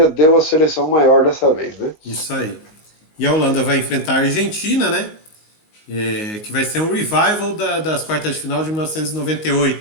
deu a seleção maior dessa vez, né? Isso aí. E a Holanda vai enfrentar a Argentina, né? Que vai ser um revival das quartas de final de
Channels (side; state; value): right; late; 19 ms